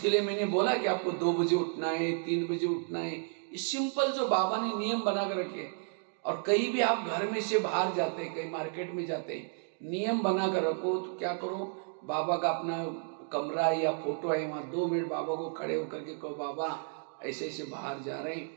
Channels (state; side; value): silent; left; 56 dB below the other